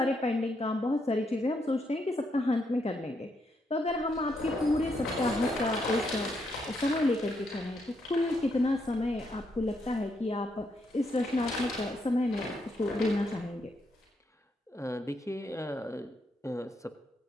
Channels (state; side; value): normal; both; correlation 0.78